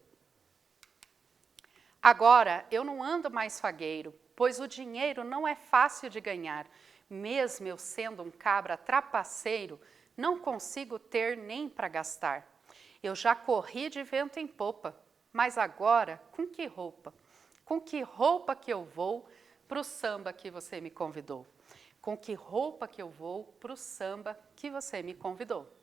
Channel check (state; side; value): quieter; left; 5.6 dB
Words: Agora eu não ando mais fagueiro, pois o dinheiro não é fácil de ganhar. Mesmo eu sendo um cabra trapaceiro, não consigo ter nem para gastar. Eu já corri de vento em popa, mas agora com que roupa? Com que roupa que eu vou para o samba que você me convidou? Com que roupa que eu vou para o samba que você me convidou?